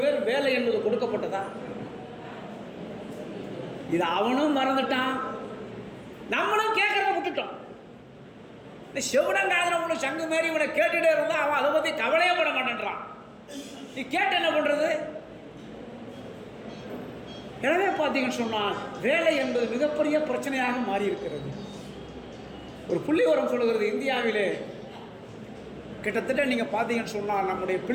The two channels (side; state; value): both; identical; correlation 1.00